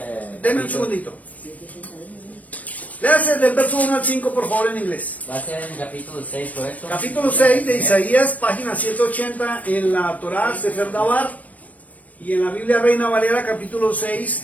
Deme un segundito. Léase del verso 1 al 5, por favor, en inglés. Va a ser en el capítulo 6, ¿correcto? Capítulo 6 de Isaías, página 180 en la Torá, Sefer Dabar, y en la Biblia Reina Valera, capítulo 6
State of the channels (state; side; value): late; right; 0.071 ms